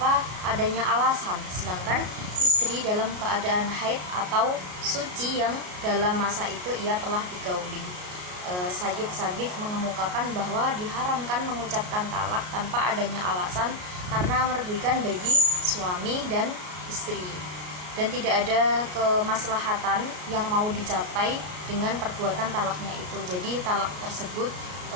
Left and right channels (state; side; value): late; left; 33 ms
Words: adanya alasan, sedangkan istri dalam keadaan haid atau suci yang dalam masa itu ia telah digauli. Sayyid Sabiq mengemukakan bahwa diharamkan mengucapkan talak tanpa adanya alasan karena merugikan bagi suami dan istri, dan tidak ada kemaslahatan yang mau dicapai dengan perbuatan talaknya itu. Jadi talak tersebut